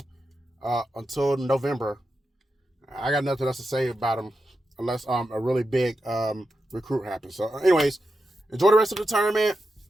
until November. I got nothing else to say about them unless a really big recruit happens. So, anyways, enjoy the rest of the tournament.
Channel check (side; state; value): both; normal; correlation 0.88